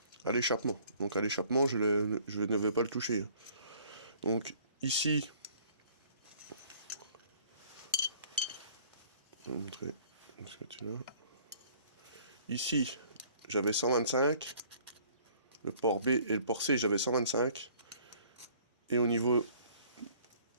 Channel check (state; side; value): inverted; both; correlation -0.56